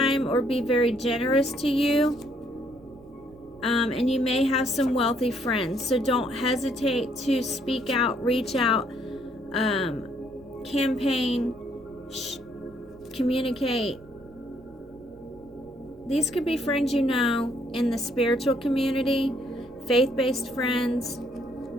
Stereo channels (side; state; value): right; noise; rumble, 25 dB below the sound